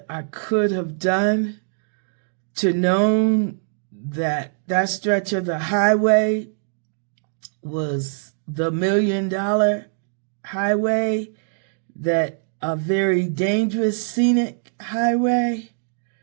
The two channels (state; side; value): silent; left; digital silence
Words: I could have done to know that that stretch of the highway was the Million Dollar Highway, that a very dangerous scenic highway.